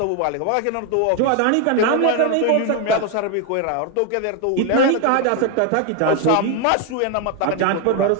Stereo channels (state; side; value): different; both; correlation 0.01